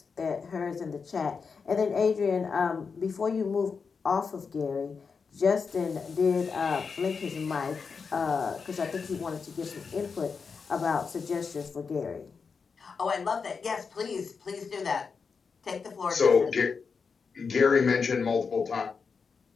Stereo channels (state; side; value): quieter; right; 5.4 dB